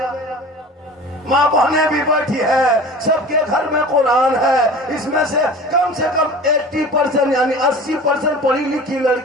माँ बहनें भी बैठी है, सबके घर में कुरान है। इसमें से कम 80% यानी 80% पढ़ी लिखी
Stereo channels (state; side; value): normal; both; correlation 0.38